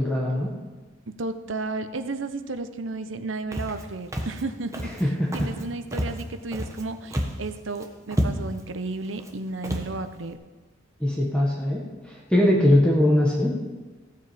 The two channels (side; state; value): both; normal; correlation 0.79